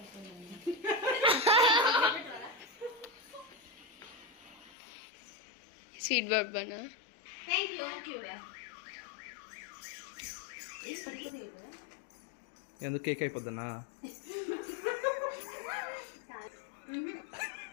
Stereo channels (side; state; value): right; drops out; at 4.7 s